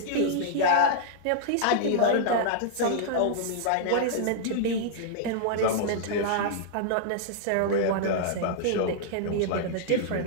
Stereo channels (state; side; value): different; both; correlation -0.01